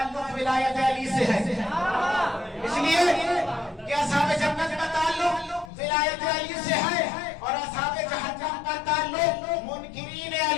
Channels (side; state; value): right; drops out; at 5.7 s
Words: ولایت علی سے ہے, اس لیے کہ اصحاب جنت کا تعلق ولایت علی سے ہے اور اصحاب جہنم کا تعلق منکرین